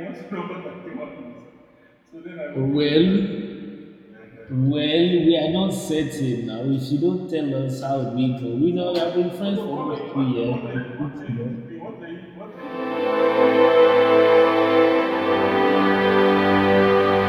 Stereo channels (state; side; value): identical; both; correlation 1.00